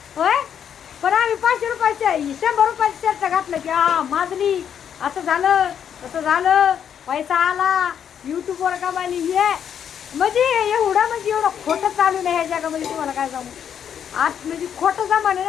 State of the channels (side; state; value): right; quieter; 8.6 dB